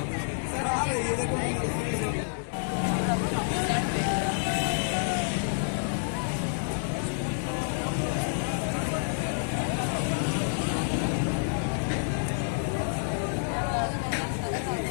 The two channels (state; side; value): silent; right; digital silence